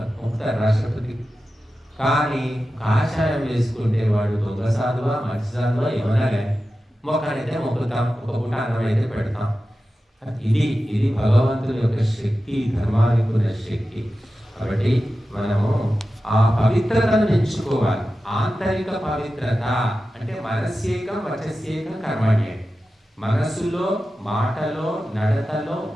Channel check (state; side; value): normal; both; correlation 0.93